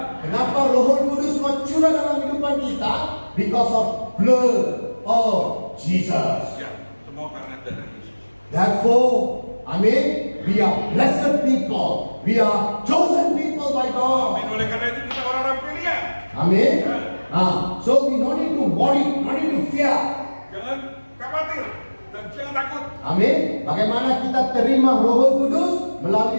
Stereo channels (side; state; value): both; inverted; correlation -1.00